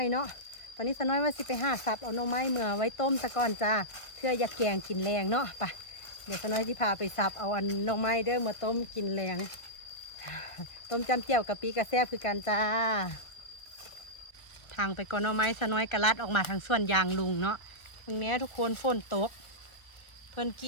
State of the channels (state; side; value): late; right; 1.3 ms